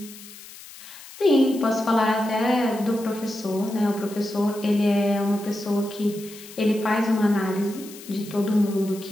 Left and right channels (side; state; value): left; noise; hiss, 17 dB below the sound